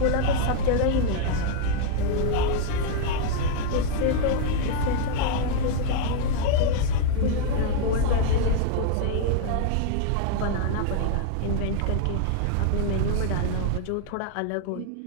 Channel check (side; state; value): both; different; correlation 0.00